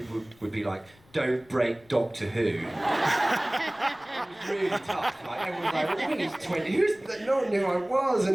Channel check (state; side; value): noise; left; rumble, 29 dB below the sound